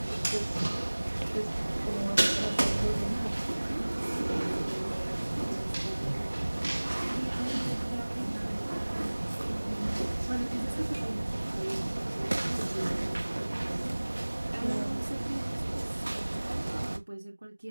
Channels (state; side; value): inverted; both; correlation -1.00